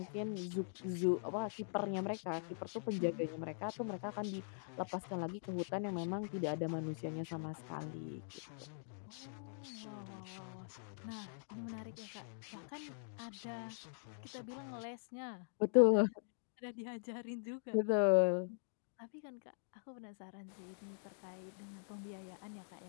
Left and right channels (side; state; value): right; silent; digital silence